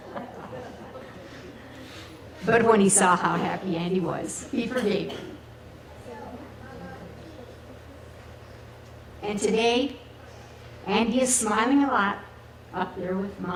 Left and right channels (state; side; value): identical; both; correlation 1.00